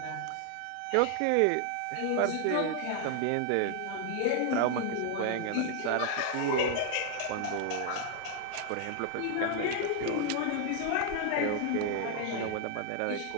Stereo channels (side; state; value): both; different; correlation 0.00